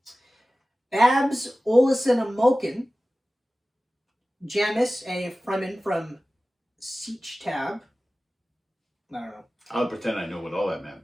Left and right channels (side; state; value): both; normal; correlation 0.96